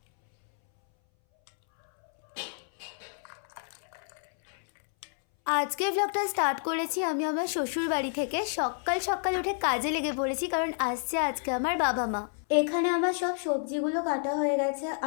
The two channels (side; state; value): right; silent; 58 dB below the other